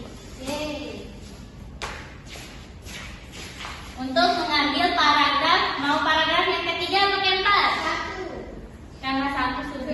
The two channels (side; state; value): both; identical; correlation 1.00